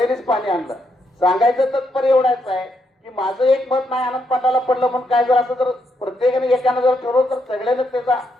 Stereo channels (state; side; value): normal; both; correlation 0.78